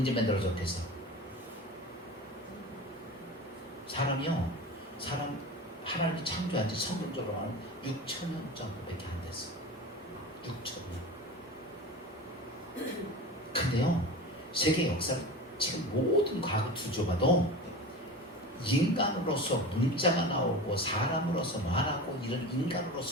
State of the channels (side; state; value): both; normal; correlation 0.31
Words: 만들어졌대서? 하나님이 창조한 지 성경적으로 말하면 6,000년 정도밖에 안 됐어. 6,000년. 근데요, 세계 역사를 지금 모든 과거 뒤져봐도 인간으로서 문자가 나오고 사람으로서 말하고 이런